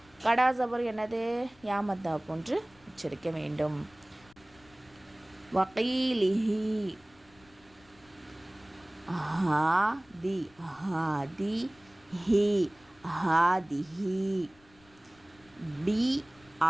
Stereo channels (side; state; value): left; noise; rumble, 29 dB below the sound